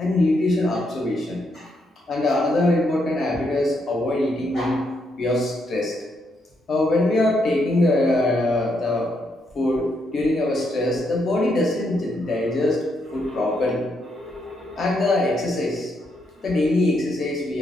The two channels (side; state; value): both; normal; correlation 0.78